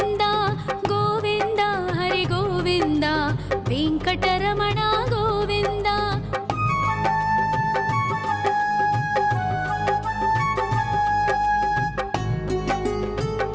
गोविन्द हरि गोविन्द वेङ्कटरमण गोविन्द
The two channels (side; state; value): both; identical; correlation 1.00